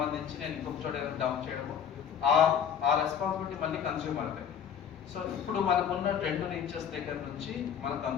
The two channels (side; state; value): right; quieter; 8.2 dB